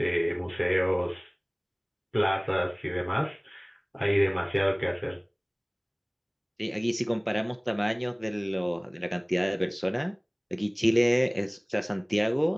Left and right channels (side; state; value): both; identical; correlation 1.00